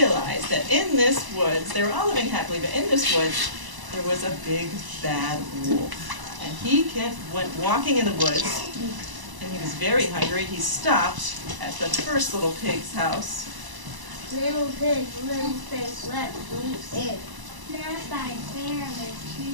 that in this woods, they were all living happily, but in this woods, there was a big, bad wolf. And he went walking in the woods, and he was very hungry. He stopped at the first little pig's house. Little pig, let me in. Not by fair, but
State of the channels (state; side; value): late; left; 1.0 ms